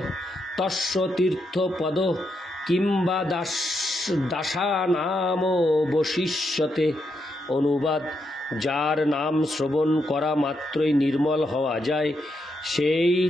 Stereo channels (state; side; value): normal; both; correlation 0.81